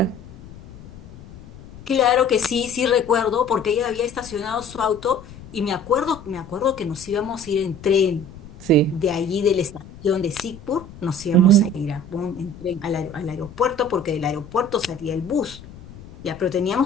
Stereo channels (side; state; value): left; noise; rumble, 18 dB below the sound